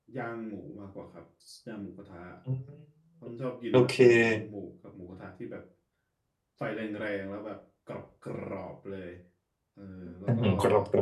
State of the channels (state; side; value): identical; both; correlation 1.00